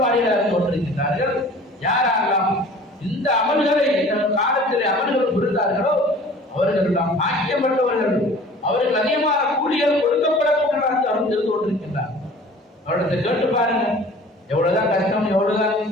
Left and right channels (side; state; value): both; normal; correlation 0.46